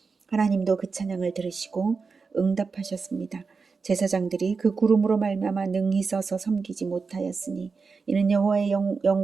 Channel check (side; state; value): left; quieter; 4.8 dB